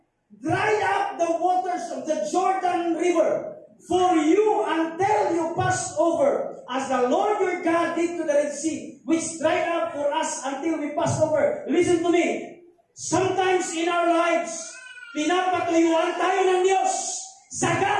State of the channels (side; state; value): both; identical; correlation 1.00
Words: dried up the waters of the Jordan River for you until you pass over, as the Lord your God did to the Red Sea, which dried up for us until we pass over. Listen to me. Sometimes in our lives, pinapatuyuan tayo ng Diyos.